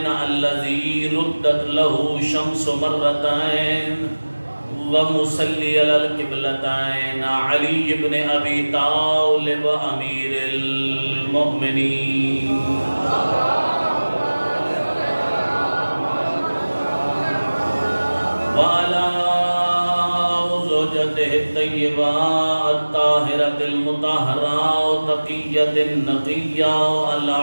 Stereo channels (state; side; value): inverted; both; correlation -1.00